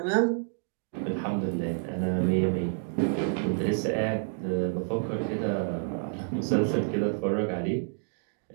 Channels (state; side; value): silent; left; 59 dB below the other